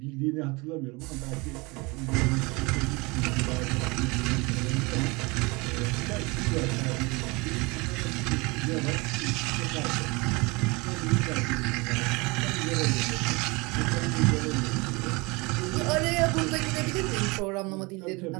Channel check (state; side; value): quieter; left; 26.1 dB